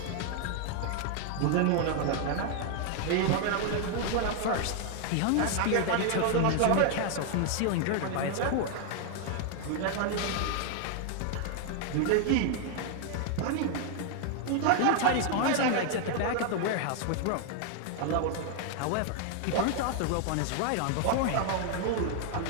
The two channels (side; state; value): both; different; correlation 0.00